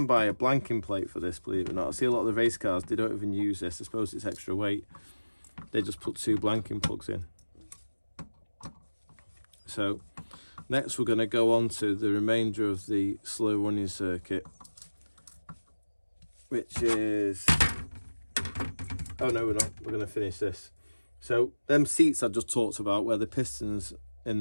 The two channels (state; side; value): inverted; both; correlation -1.00